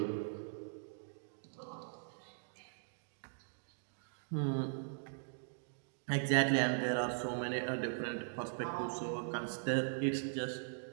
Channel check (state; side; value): silent; left; digital silence